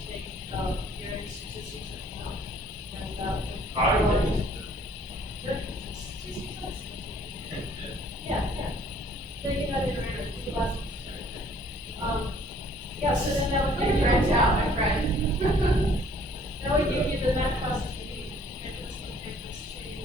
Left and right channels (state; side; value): normal; both; correlation 0.58